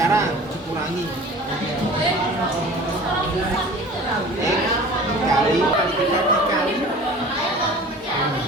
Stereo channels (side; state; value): both; normal; correlation 0.42